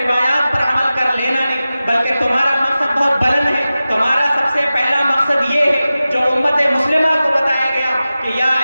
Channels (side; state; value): both; inverted; correlation -0.95